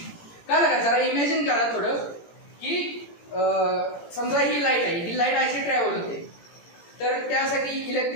कळलं का, जरा इमॅजिन करा थोडं की समजा ही लाईट आहे, ही लाईट अशी ट्रॅव्हल होते तर त्यासाठी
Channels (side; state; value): right; late; 17 ms